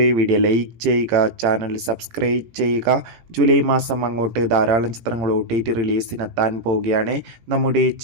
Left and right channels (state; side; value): late; left; 18 ms